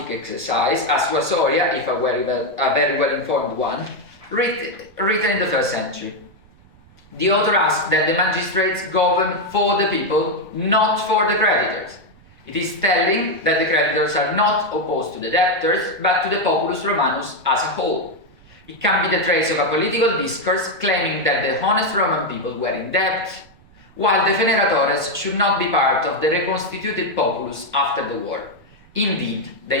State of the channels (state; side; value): noise; right; rumble, 27 dB below the sound